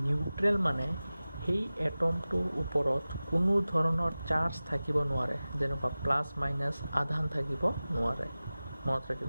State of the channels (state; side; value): inverted; both; correlation -0.97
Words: neutral মানে সেই এটমটোৰ ওপৰত কোনো ধৰণৰ চাৰ্জ থাকিব নোৱাৰে যেনেকুৱা প্লাছ মাইনাছ আধান থাকিব নোৱাৰে মনত